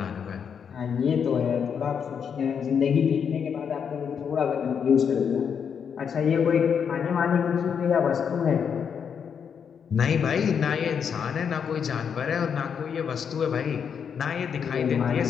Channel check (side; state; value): right; quieter; 7.2 dB